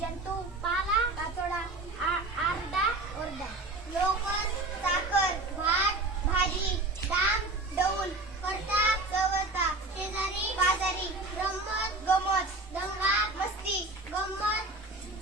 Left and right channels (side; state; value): left; quieter; 3.1 dB